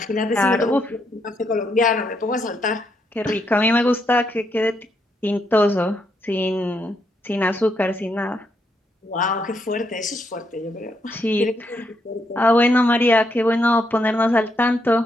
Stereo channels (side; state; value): both; normal; correlation 0.77